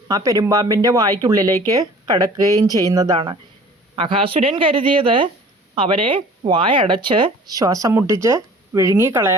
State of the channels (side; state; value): both; normal; correlation 0.48